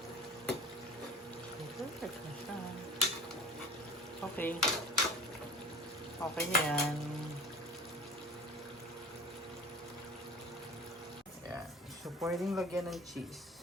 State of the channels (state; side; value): normal; both; correlation 0.40